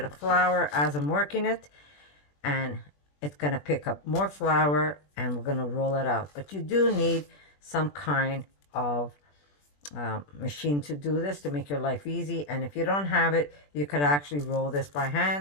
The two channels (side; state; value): right; late; 21 ms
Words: of flour as I'm working it, and it's going to pick up more flour, and we're going to roll it out. But you do need some kind of machine to do this to make your life easy, and if you don't have it, you could actually roll this by